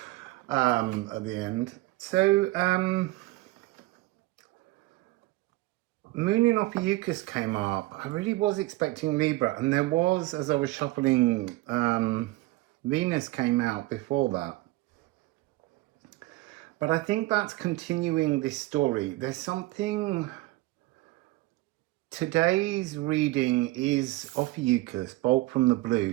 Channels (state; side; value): quieter; left; 19.5 dB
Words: at the end. So, Moon in Ophiuchus came up. I really was expecting Libra, and there was, as I was shuffling, Venus came out before that. But I think that's continuing this story. There's something... Today's reading is Ophiuchus, Bolt from the Blue,